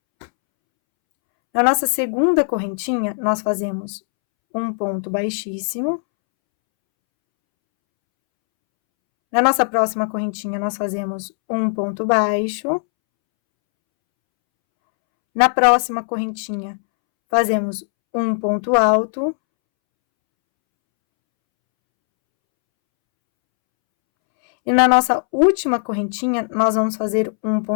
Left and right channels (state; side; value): silent; right; 66 dB below the other